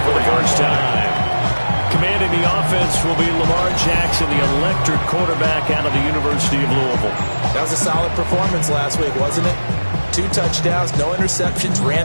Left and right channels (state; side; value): inverted; both; correlation -1.00